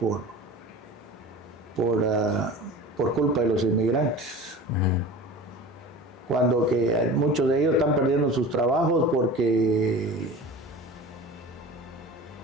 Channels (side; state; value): both; normal; correlation 0.36